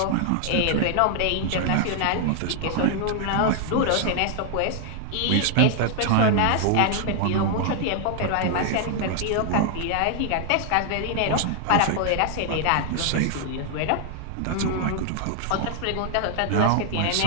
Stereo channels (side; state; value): both; different; correlation 0.00